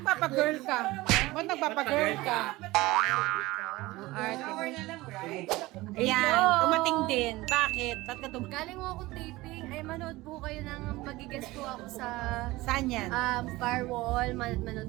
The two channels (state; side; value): quieter; left; 19.6 dB